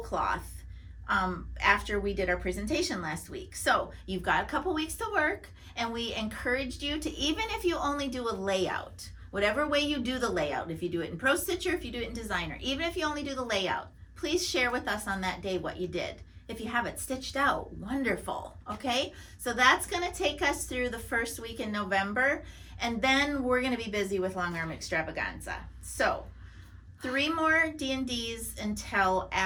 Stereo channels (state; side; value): identical; both; correlation 1.00